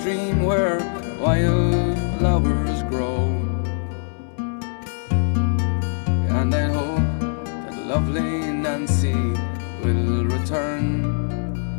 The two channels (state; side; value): silent; right; digital silence